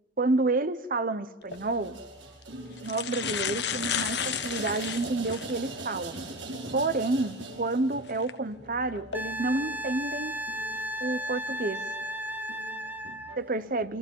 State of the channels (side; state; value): both; normal; correlation 0.27